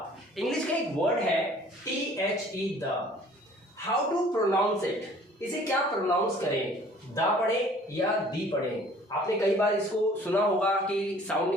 English का एक word है THE the. How to pronounce it? इसे क्या pronounce करें? The पढ़े या दी पढ़े? आपने कई बार इसको सुना होगा कि साउंड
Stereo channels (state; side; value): normal; both; correlation 0.53